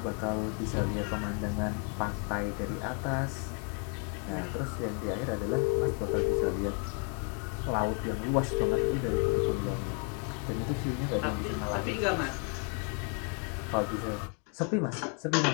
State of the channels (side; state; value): right; quieter; 39.3 dB